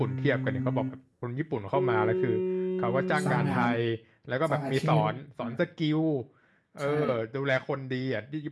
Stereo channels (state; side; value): identical; both; correlation 1.00